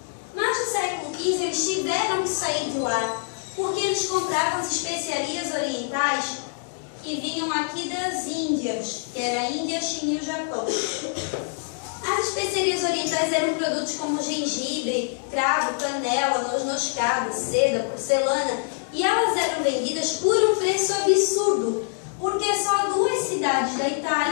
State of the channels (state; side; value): silent; right; 62 dB below the other